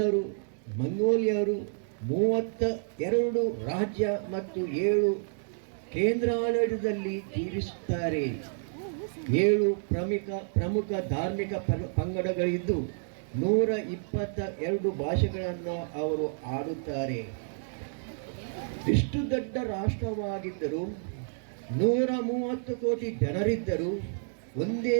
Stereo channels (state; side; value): silent; left; digital silence